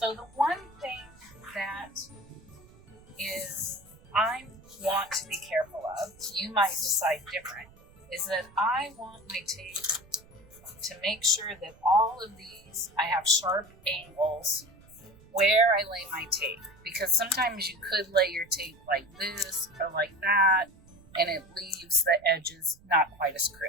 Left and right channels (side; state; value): right; noise; rumble, 25 dB below the sound